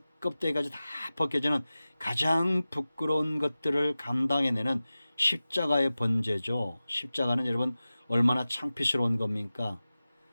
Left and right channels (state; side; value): inverted; both; correlation -0.96